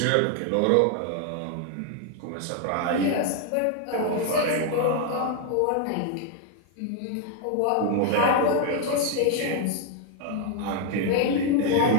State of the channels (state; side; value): different; both; correlation 0.00